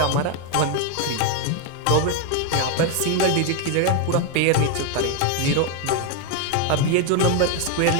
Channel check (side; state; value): both; different; correlation 0.01